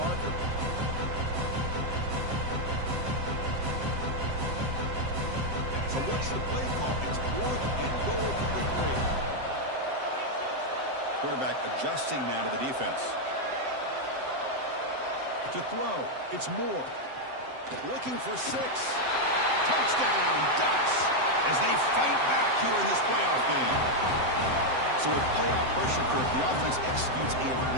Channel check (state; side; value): late; left; 7.7 ms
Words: So what's the play call? It's fourth and goal from the 3. Quarterback adjusting now to the defense. To throw, it's Moore. Looking for 6. Touchdown, Ducks, as they fight back here in this playoff game. So with playoff pressure, Kirk, the offense executes a